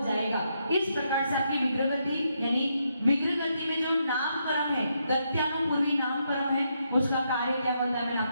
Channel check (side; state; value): both; inverted; correlation -0.79